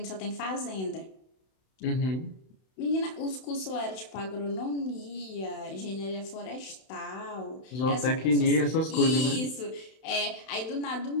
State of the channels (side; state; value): right; late; 31 ms